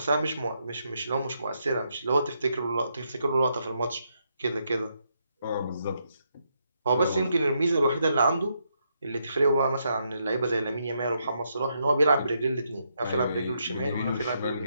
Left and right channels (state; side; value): inverted; both; correlation -0.78